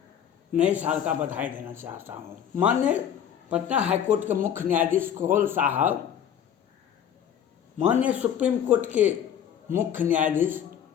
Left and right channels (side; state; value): right; quieter; 9.1 dB